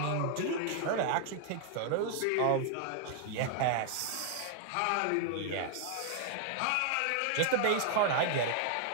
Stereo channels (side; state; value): both; different; correlation 0.00